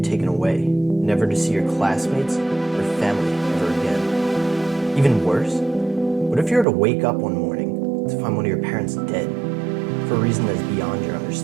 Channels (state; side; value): drops out; left; at 6.7 s